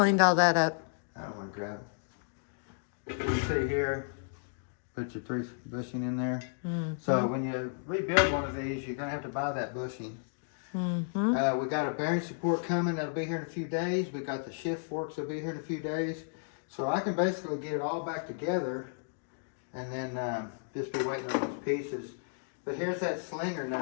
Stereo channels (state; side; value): silent; right; digital silence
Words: all that up. I don't want to grab it. You see here, put your 3 bushing in there. So when you rebuild one of these, you're going to have to buy that bushing. We got a bearing support coming that'll be here in a few days. We got the shift forks that'll be here in a few days. So I can basically get it all back together and then just be waiting on those pieces. But here's that slinger